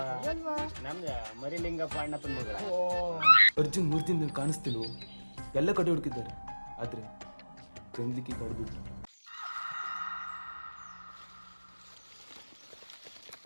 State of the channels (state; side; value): inverted; both; correlation -1.00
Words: ನಮ್ದು ಮರಿಲಿಂಗಪ್ಪ ಅಣ್ಣಪ್ಪನ ಮಗಳ. ಅರ್ಜುನ್ 3 ದಿನ ಕಾಣಿಸ್ತಿಲ್ವ, ಎಲ್ಲ ಕಡೆ ಹುಡುಕಿದ್ದಾರೆ, ಆದ್ರೆ ಗಂದ್ಲಿಕ್ಕಿ ಕಡ್ಬಿಟ್ಟು.